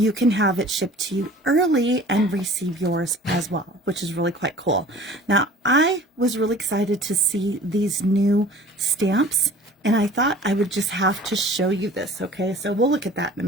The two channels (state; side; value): normal; both; correlation 0.46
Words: can have it shipped to you early and receive yours as well, which is really quite cool. Now, I was really excited to see these new stamps, and I thought I would just have to show you this, okay? So we'll look at that in a